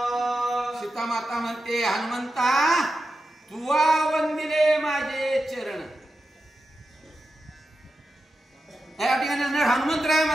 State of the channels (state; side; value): normal; both; correlation 0.90